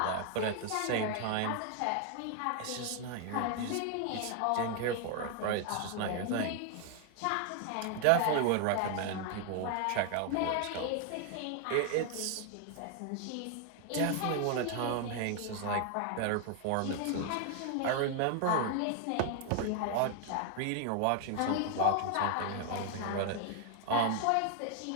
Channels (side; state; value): both; different; correlation 0.00